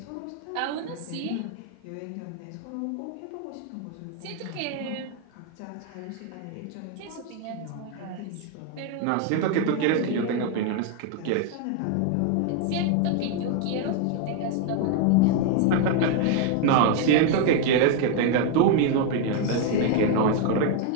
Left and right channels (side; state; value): both; different; correlation 0.01